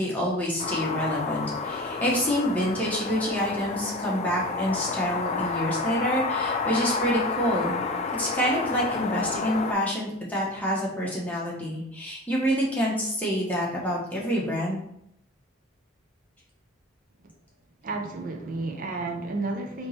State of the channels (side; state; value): both; normal; correlation 0.34